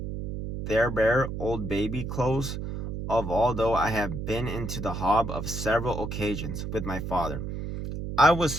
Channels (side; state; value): right; noise; hum, 5 dB below the sound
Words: bare old baby clothes of although I have been into the hob of several occasions with my father. I